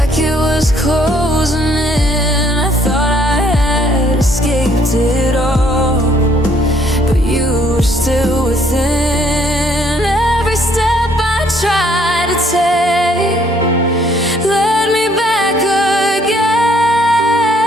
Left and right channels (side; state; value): both; normal; correlation 0.65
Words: it was closing in. I thought I had escaped it all, but you were still within. Every step I tried to take led me back